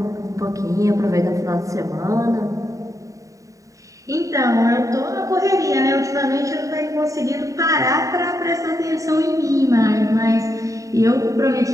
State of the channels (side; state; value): left; late; 0.16 ms